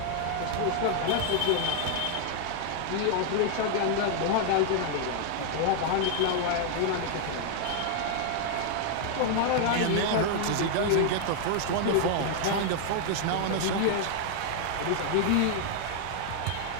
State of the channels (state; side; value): different; both; correlation 0.00